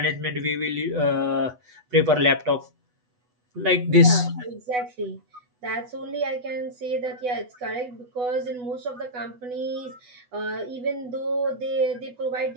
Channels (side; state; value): left; late; 8.1 ms